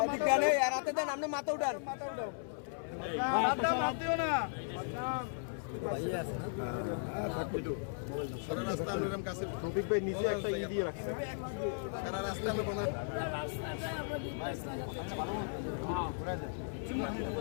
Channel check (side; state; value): right; silent; 54 dB below the other